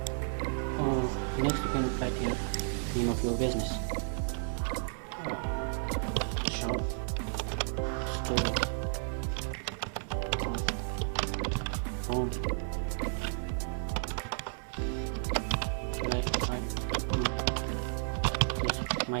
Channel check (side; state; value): left; silent; 56 dB below the other